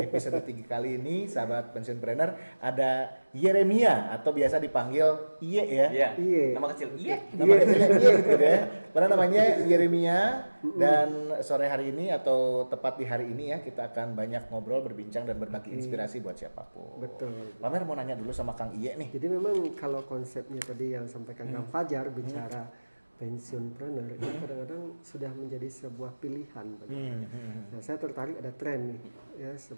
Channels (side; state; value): both; inverted; correlation -1.00